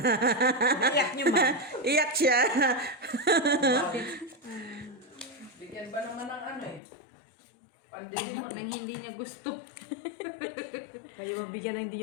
Iyak niyo ba? Iyak siya. Bigyan ba naman ng ano eh? Pandili mo. Nang hindi niya gusto. Kayo mabigyan na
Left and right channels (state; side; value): drops out; right; at 6.8 s